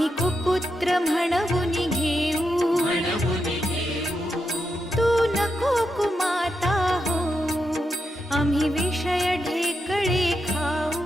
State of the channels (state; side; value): normal; both; correlation 0.84